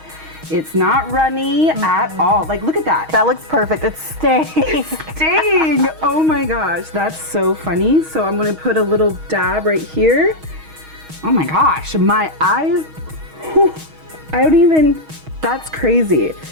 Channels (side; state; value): left; late; 6.3 ms